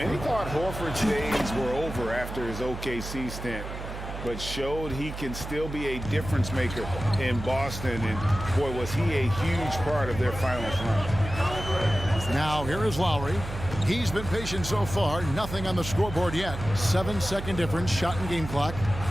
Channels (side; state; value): right; noise; hum, 8 dB below the sound